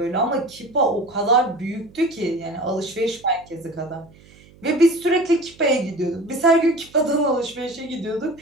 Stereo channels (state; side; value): noise; right; hum, 25 dB below the sound